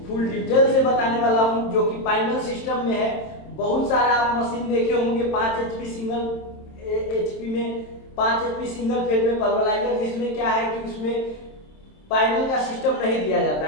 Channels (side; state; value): right; late; 27 ms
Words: फुल डिटेल से बताने वाला हूँ, जो कि फाइनल सिस्टम में है। बहुत सारा आप मशीन देखे होंगे 5 HP सिंगल HP में 5 HP सिंगल फेज में पल्वराइजर, जिसमें क्या है कि उसमें फाइनल का सिस्टम नहीं दिया जाता